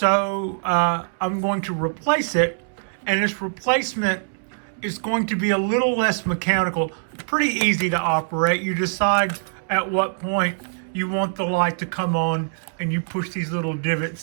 I'm going to replace it, and this replacement is going to be a little less mechanical, pretty easy to operate. You decide at what point you want the light to come on, and you push these little divots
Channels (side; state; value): left; silent; digital silence